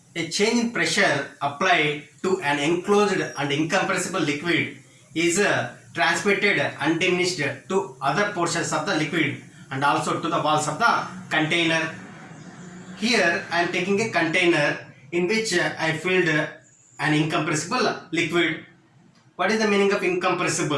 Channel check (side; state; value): both; identical; correlation 1.00